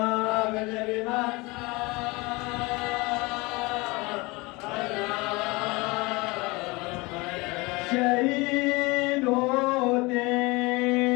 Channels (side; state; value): right; quieter; 24.6 dB